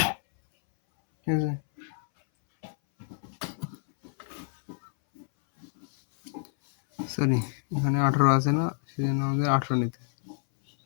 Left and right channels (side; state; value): right; silent; 60 dB below the other